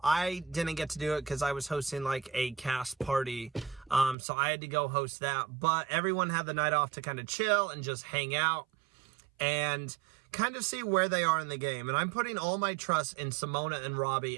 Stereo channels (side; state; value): left; drops out; at 4.2 s